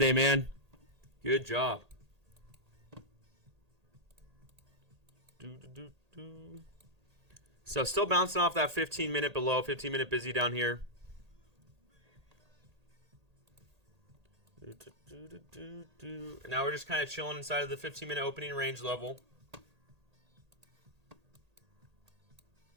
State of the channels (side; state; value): left; late; 1.8 ms